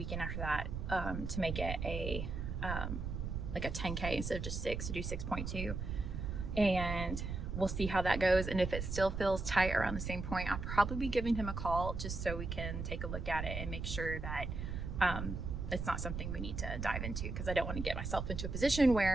after that to make it a like a 10K instead of just 6, to do 6.2. And we'll see how that goes. And if it still feels tight around the same point, I'll probably be giving him a call just so we can take a look at it and make sure that it's not something we need to dive into, because I don't want to get myself into a position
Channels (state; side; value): noise; right; rumble, 4 dB below the sound